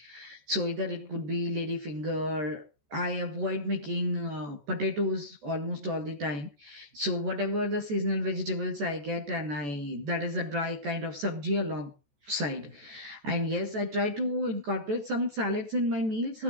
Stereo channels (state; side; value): late; left; 14 ms